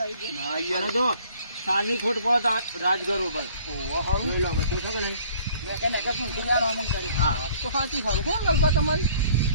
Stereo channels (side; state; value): both; inverted; correlation -0.55